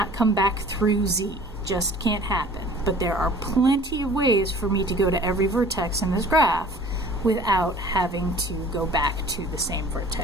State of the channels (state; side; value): normal; both; correlation 0.48